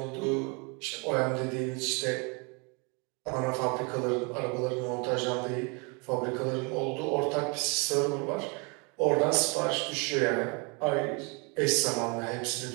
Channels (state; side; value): quieter; left; 32.2 dB